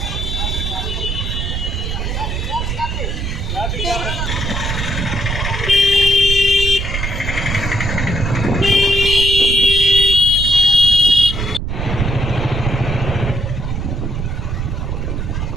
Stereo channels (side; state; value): right; noise; rumble, 2 dB below the sound